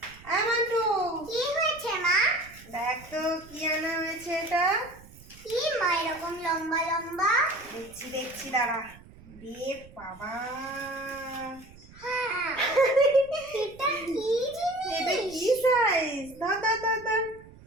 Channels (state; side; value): noise; right; rumble, 21 dB below the sound